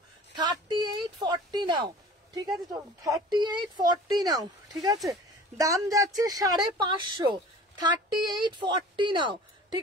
3840 নাও। ঠিক আছে, তো 3840 নাও। ঠিক আছে, দাম যাচ্ছে 550। 3840 নাও।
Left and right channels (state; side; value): normal; both; correlation 0.43